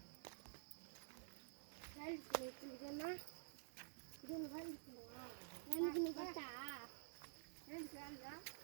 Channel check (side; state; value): left; silent; digital silence